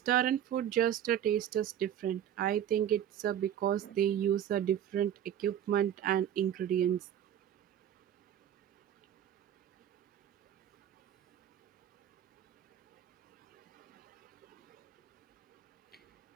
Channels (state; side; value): quieter; left; 10.4 dB